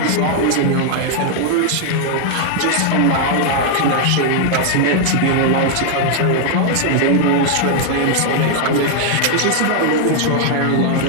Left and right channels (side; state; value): both; different; correlation 0.00